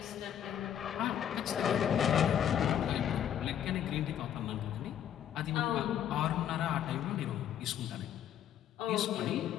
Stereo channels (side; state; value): right; quieter; 10.0 dB